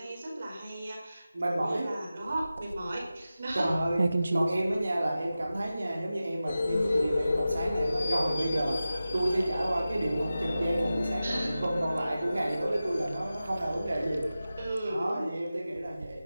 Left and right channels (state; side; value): inverted; both; correlation -0.94